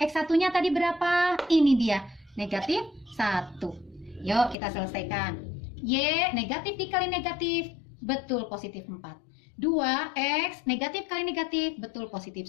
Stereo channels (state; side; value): drops out; right; at 4.5 s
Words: tadi berapa? Ini dia. Negatif 1. Yuk kita selesaikan. Y negatif dikali negatif, betul positif 4. 2X negatif kali negatif, betul positif